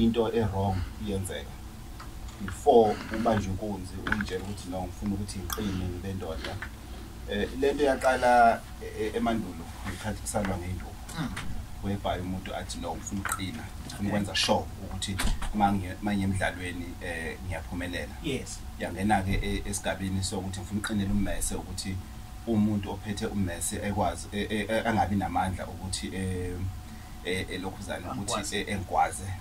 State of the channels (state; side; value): identical; both; correlation 1.00